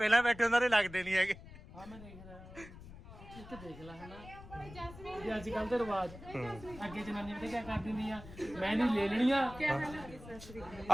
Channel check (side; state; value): left; noise; rumble, 16 dB below the sound